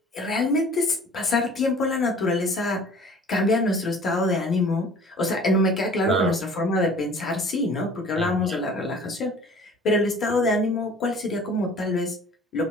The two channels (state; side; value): normal; both; correlation 0.48